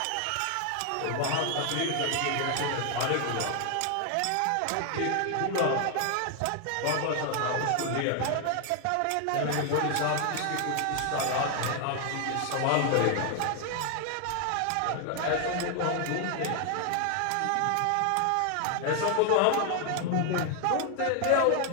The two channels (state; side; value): different; both; correlation 0.00